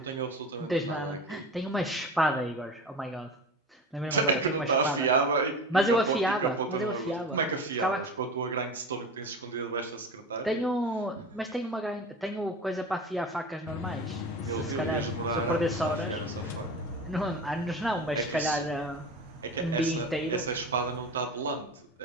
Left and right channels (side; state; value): both; normal; correlation 0.31